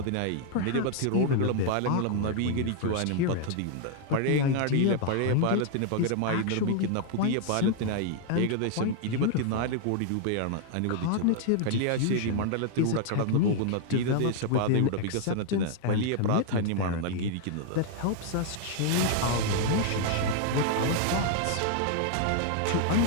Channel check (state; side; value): different; both; correlation 0.00